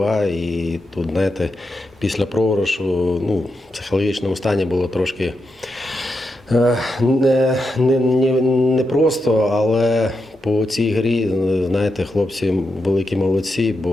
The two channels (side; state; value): both; normal; correlation 0.86